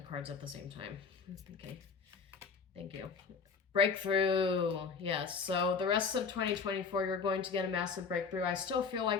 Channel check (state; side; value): quieter; right; 5.4 dB